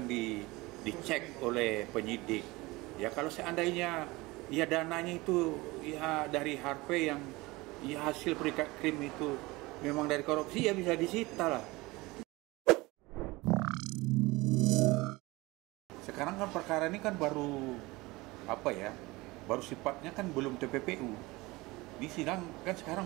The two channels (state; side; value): quieter; left; 21.9 dB